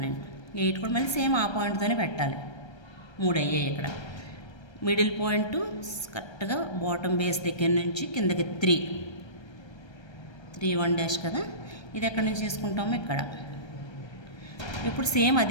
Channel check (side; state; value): right; late; 1.3 ms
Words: నేను. 8 కూడా మళ్ళీ సేమ్ ఆ పాయింట్తోనే పెట్టాలి. 3 అయ్యాయి ఇక్కడ. మిడిల్ పాయింట్ కరెక్ట్గా బాటమ్ బేస్ దగ్గర నుంచి కిందకి 3 1 డాష్ కదా, ఇది ఎక్కడి నుంచి తీసుకుంటామో ఇక్కడ. ఇప్పుడు సేమ్